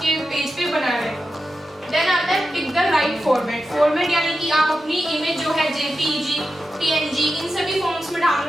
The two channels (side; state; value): both; normal; correlation 0.91